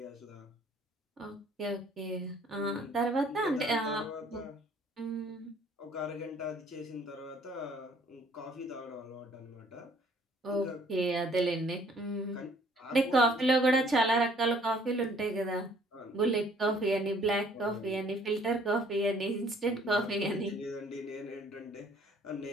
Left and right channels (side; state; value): both; normal; correlation 0.59